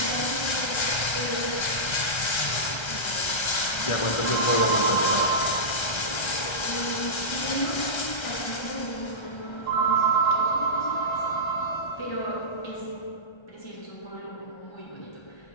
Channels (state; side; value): late; right; 1.3 ms